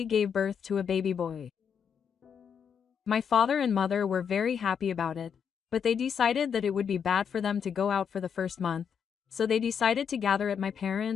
gave birth to a baby boy. My father and mother were very happy about it, but they decided that it would be bad for them to go out for the first month, so they decided to gather at my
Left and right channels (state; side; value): quieter; right; 7.3 dB